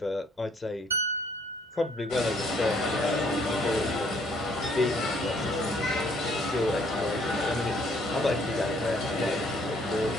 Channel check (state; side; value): normal; both; correlation 0.65